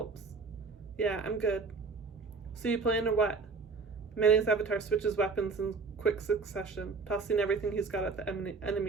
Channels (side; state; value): left; quieter; 4.5 dB